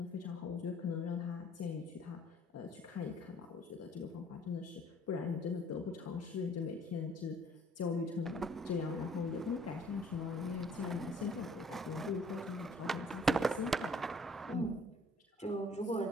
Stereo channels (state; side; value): normal; both; correlation 0.57